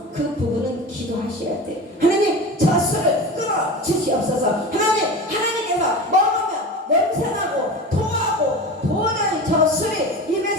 그 부분은 기도하셔야 돼. 하나님, 저 술을 끊어 주시옵소서. 하나님께서 먹으면 냄새나고 토하고 도저히 저 술이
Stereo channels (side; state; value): both; normal; correlation 0.30